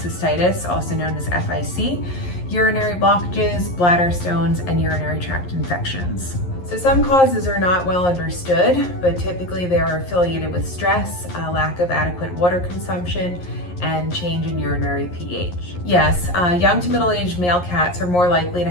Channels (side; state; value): right; late; 11 ms